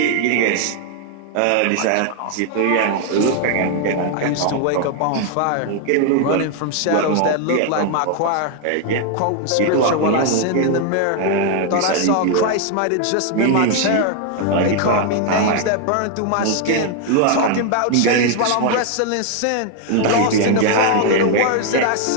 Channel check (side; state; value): both; different; correlation 0.00